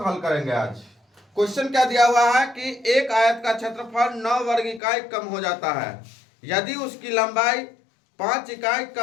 हल करेंगे आज। क्वेश्चन क्या दिया हुआ है कि एक आयत का क्षेत्रफल 9 वर्ग इकाई कम हो जाता है यदि उसकी लंबाई 5 इकाई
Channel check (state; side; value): drops out; right; at 4.8 s